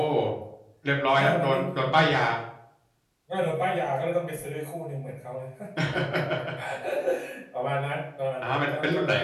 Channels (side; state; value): both; identical; correlation 1.00